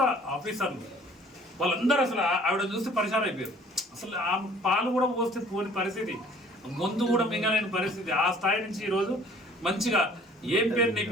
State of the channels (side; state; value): both; normal; correlation 0.53